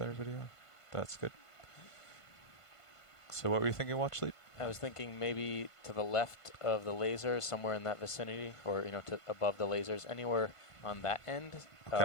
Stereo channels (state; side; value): late; right; 1.5 ms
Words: video. That's good. So what were you thinking, watch lead? I was thinking maybe to the left of the lasers, somewhere in that vicinity, or you know, to above the lasers, anywhere on that end.